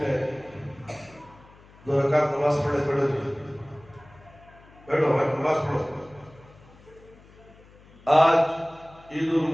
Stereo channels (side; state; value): left; noise; hum, 25 dB below the sound